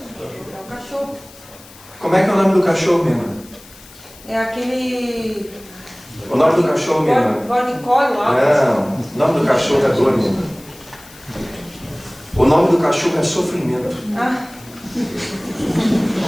o cachorro. Como é que é o nome do cachorro, minha irmã? É aquele... O nome do cachorro, minha irmã? Bornicole lá. Não, o nome do cachorro é dor, minha irmã. O nome do cachorro é sofrimento. Ah.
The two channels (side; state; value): left; noise; hiss, 22 dB below the sound